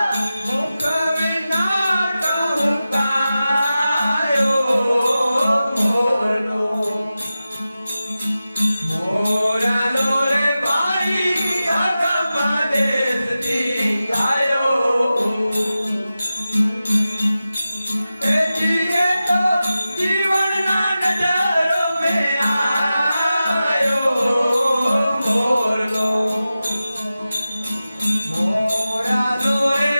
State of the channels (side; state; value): both; inverted; correlation -0.94